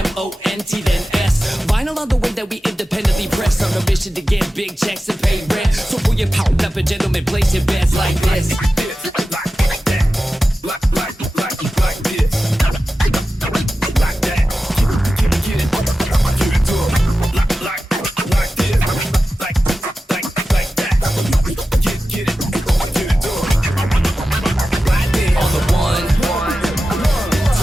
then S. Vinyl on the way that we independently press. On a mission to get big checks and pay rent. So pull your power up and gentlemen, place your bets like this.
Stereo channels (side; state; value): both; normal; correlation 0.93